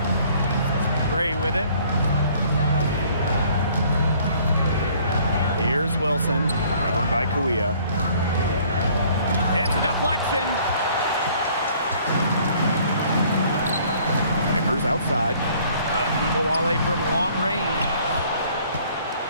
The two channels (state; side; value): inverted; both; correlation -0.58